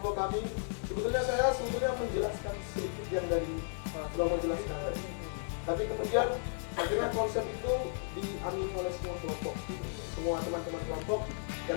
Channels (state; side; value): silent; right; 55 dB below the other